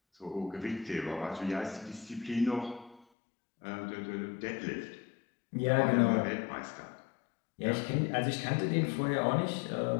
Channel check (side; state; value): right; drops out; at 3.1 s